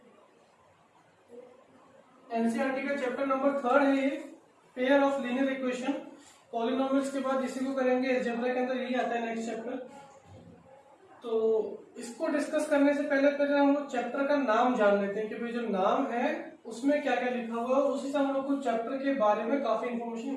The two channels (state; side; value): identical; both; correlation 1.00